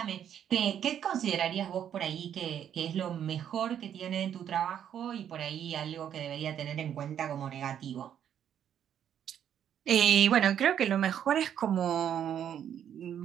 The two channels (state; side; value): quieter; left; 9.5 dB